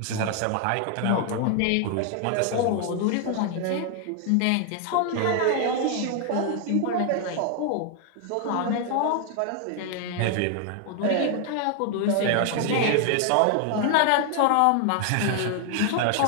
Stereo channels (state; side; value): different; both; correlation 0.00